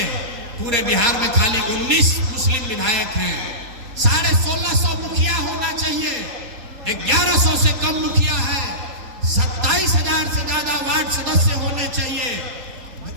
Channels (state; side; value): late; left; 3.8 ms